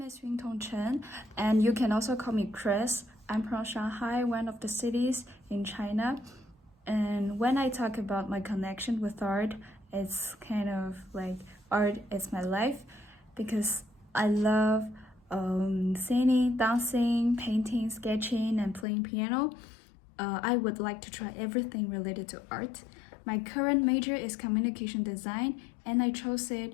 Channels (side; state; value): right; drops out; at 18.9 s